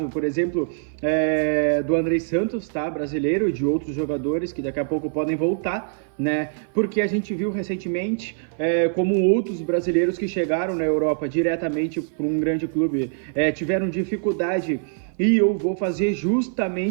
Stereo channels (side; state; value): left; silent; 57 dB below the other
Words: por exemplo, do André Santos, tá? Brasileiro, e de outros jogadores que daqui a pouco podem voltar, né? Porque a gente viu recentemente como outros brasileiros que chegaram na Europa diretamente para um grande clube tiveram dificuldade. E eu vou fazer